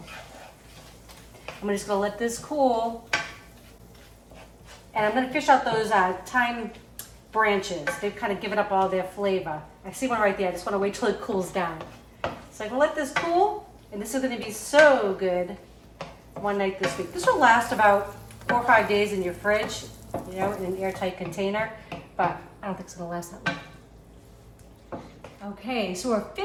I'm just gonna let this cool. And I'm gonna fish out those thyme branches. They've kind of given up all their flavor. I see one right there, I just wanna wait till it cools down. So I'm gonna let this cool, and this is gonna be so good one night this week. This will last about 4 or 5 days in your fridge, you know, in an airtight container, but I don't think it's gonna last that long. Okay, so we're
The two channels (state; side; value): identical; both; correlation 1.00